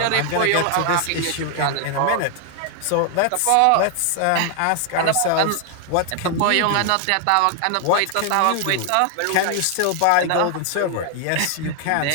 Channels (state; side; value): different; both; correlation 0.00